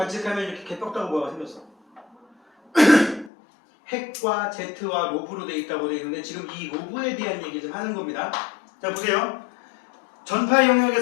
이렇게 개떡다구 모양이 생겼어. 핵과 Z와 로브로 되어 있다고 되어 있는데 지금 이 로브에 대한 얘기 좀 하는 겁니다. 자 보세요. 전파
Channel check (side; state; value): right; drops out; at 3.3 s